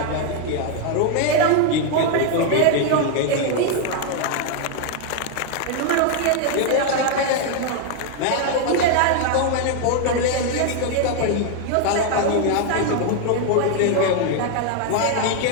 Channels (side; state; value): both; different; correlation 0.00